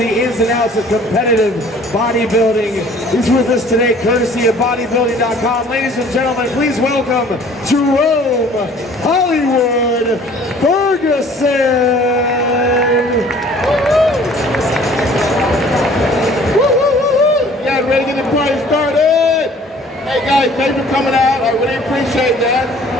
ins and outs of competitive bodybuilding. He's with us today courtesy of bodybuilding.com. Ladies and gentlemen, please welcome Jerome Hollywood Ferguson. Ready to get the party started? Hey guys, thanks for coming out. I really appreciate that.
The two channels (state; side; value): normal; both; correlation 0.53